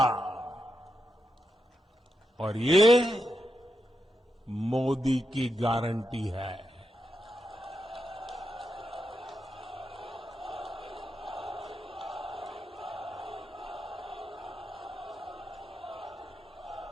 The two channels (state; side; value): normal; both; correlation 0.85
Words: और ये मोदी की गारंटी है।